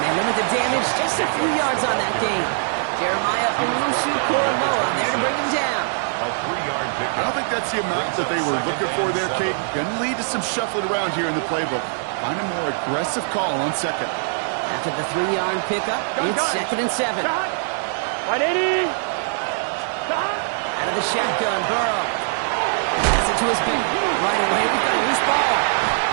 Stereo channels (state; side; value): silent; left; 56 dB below the other